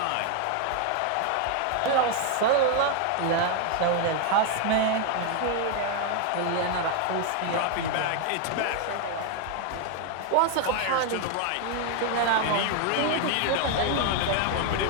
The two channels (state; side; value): different; both; correlation 0.01